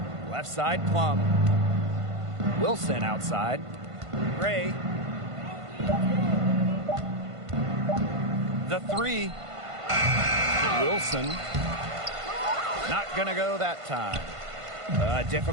Left side, Plum. Wilson outside. Gray. The 3. Wilson. Not gonna go that time. A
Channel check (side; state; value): left; late; 1.5 ms